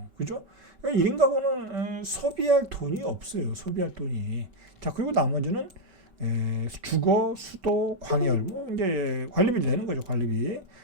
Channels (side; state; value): left; late; 5.2 ms